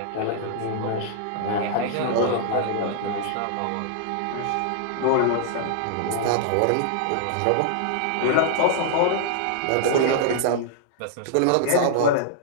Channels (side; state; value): both; different; correlation -0.01